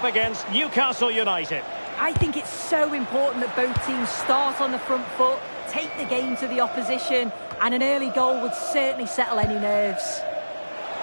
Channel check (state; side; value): inverted; both; correlation -1.00